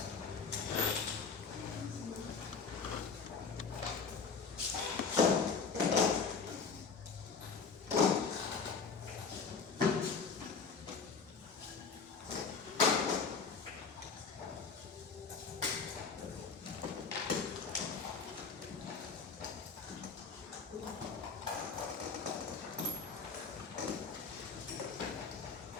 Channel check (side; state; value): right; quieter; 5.3 dB